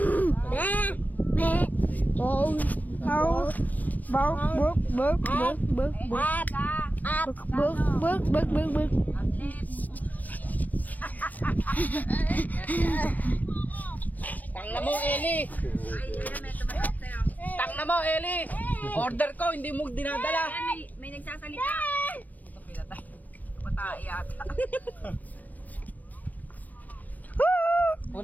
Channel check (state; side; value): late; right; 0.081 ms